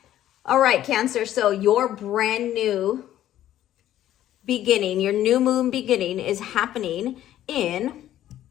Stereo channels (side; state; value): right; quieter; 12.6 dB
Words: All right, Cancer, so your brand new beginning, your new moon beginning is happening in